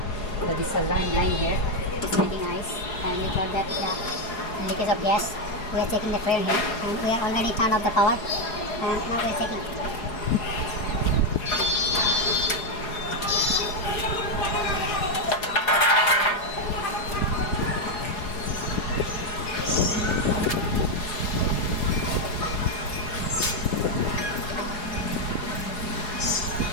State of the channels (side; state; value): right; late; 4.8 ms